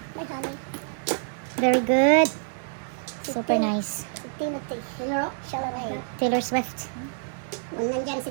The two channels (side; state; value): left; silent; digital silence